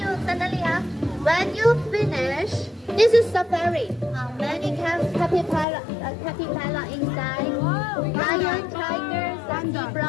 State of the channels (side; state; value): right; drops out; at 5.7 s